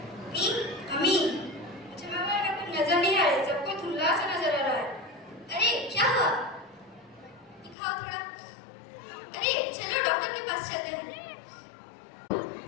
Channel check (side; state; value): right; drops out; at 7.8 s